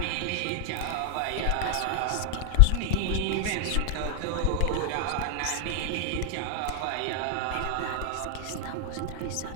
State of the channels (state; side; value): different; both; correlation 0.00